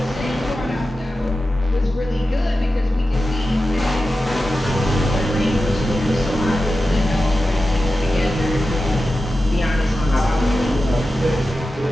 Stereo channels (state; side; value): normal; both; correlation 0.92